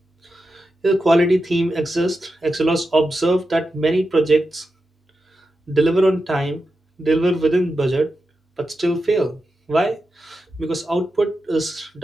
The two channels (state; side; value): normal; both; correlation 0.90